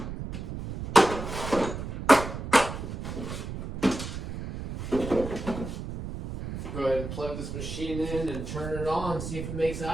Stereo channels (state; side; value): noise; right; rumble, 7 dB below the sound